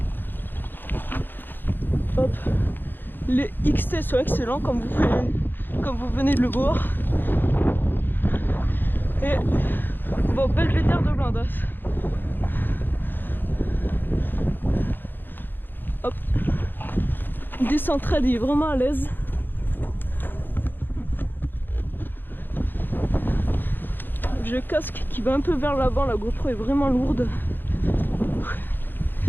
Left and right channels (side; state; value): right; late; 0.094 ms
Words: Hop. Les XT sont excellents comme vous venez de le voir. Et on va au Belvédère de Blindas. Hop. Descente trade, il est vraiment à l'aise. J'ai le casque qui va un peu vers l'avant, la GoPro est vraiment lourde.